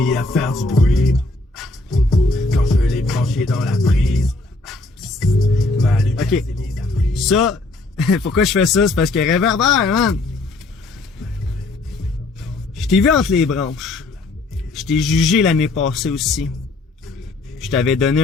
à faire du bruit quand je l'ai branché dans la prise. Ma lumière Ok. s'est mise à briller. Ça, pourquoi je fais ça? C'est parce que Réverbère, man! Je t'ai vu entre les branches. Je t'ai jugé l'année passée aussi. Je t'avais donné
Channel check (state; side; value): quieter; right; 3.2 dB